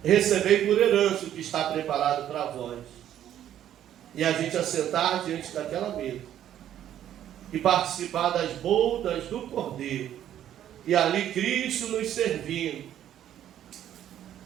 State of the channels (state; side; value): quieter; left; 11.1 dB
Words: recebei por herança o que está preparado para vós. E a gente assentar diante daquela mesa. E participar das bodas do Cordeiro. E ali Cristo nos servindo.